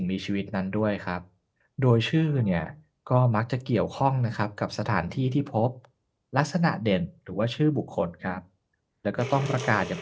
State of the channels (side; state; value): both; identical; correlation 1.00